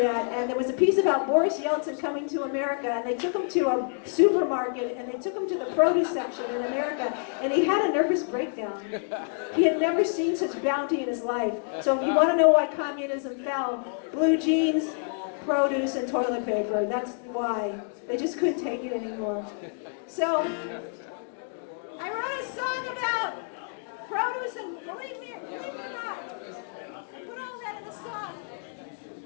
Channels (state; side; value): silent; right; 59 dB below the other